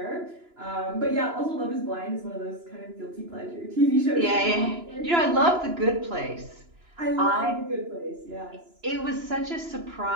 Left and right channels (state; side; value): late; left; 2.9 ms